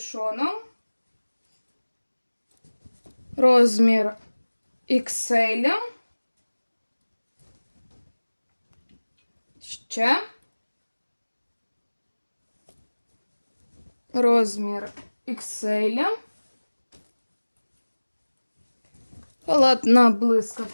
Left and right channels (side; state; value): both; inverted; correlation -1.00